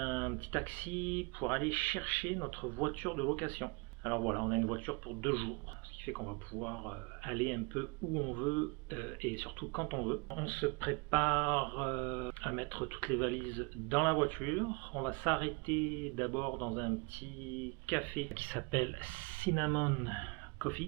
petit taxi pour aller chercher notre voiture de location. Alors voilà, on a une voiture pour 2 jours, ce qui fait qu'on va pouvoir aller un peu où on veut et surtout quand on veut. On se prépare à mettre toutes les valises dans la voiture. On va s'arrêter d'abord dans un petit café qui s'appelle Cinnamon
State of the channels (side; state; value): left; quieter; 31.4 dB